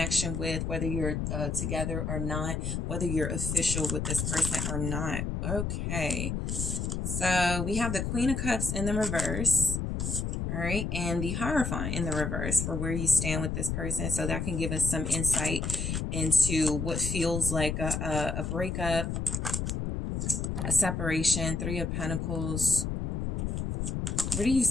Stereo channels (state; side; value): noise; left; rumble, 2 dB below the sound